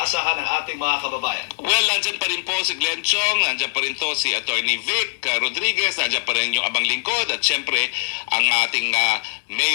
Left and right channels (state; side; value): silent; right; digital silence